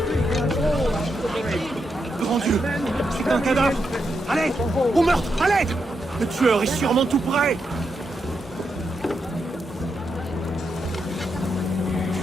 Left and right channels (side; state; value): both; normal; correlation 0.84